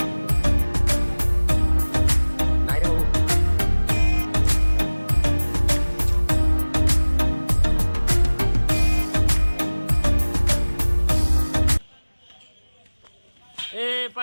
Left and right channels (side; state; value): both; inverted; correlation -1.00